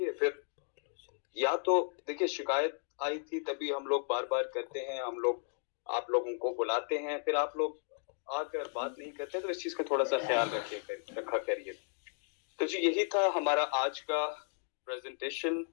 फिर या तो देखिए शिकायत आई थी, तभी हम लोग बार बार करते हैं, हम लोग आप लोगों को बुलाते हैं, फिर आप लोग आकर बात नहीं करते, तो इस चीज का थोड़ा सा ख्याल रखा करिए। तो जी यही था हमारा आज का प्रेजेंटेशन।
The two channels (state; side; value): silent; right; 55 dB below the other